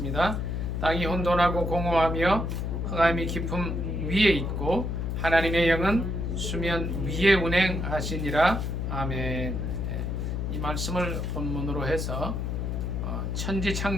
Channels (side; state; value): left; noise; hum, 2 dB below the sound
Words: 땅이 혼돈하고 공허하며 흑암이 깊음 위에 있고 하나님의 영은 수면 위에 운행하시니라. 아멘. 이 말씀을 본문으로 해서 천지